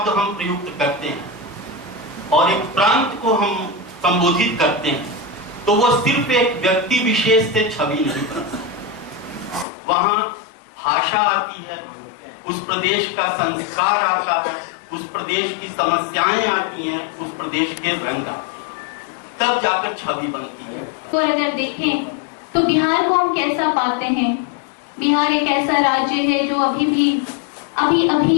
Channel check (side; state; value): right; drops out; at 9.7 s